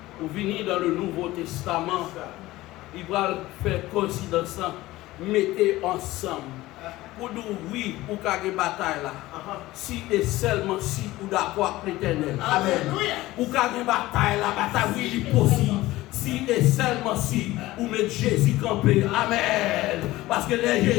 ou venir dans le Nouveau Testament, il va faire coïncidence, mettez ensemble. Pour nous, oui, pour qu'il y ait une bataille là. Si et seulement si vous d'accord avec l'Éternel. Amen. Pour qu'il y ait une bataille là, bataille oui, il est possible. Si et seulement si vous mettez Jésus campé. Amen. Parce que les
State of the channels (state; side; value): quieter; right; 17.7 dB